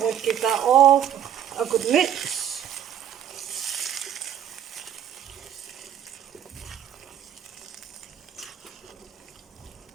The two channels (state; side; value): quieter; left; 9.9 dB